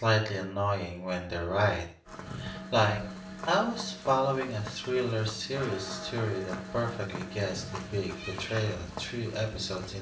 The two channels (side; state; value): both; identical; correlation 1.00